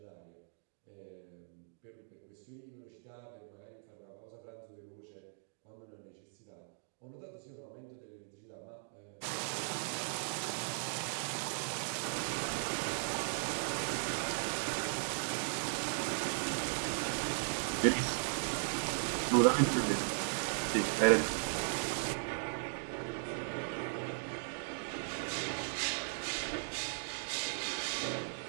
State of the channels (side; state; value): left; silent; digital silence